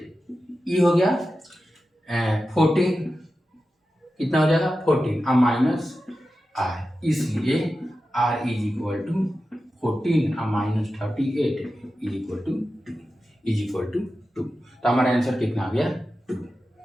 ये हो गया 14, कितना हो जाएगा 14 माइनस r, इसलिए r is equal to 14 minus 38 is equal to 2, is equal to 2। तो हमारा आंसर कितना आ गया 2।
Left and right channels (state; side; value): normal; both; correlation 0.92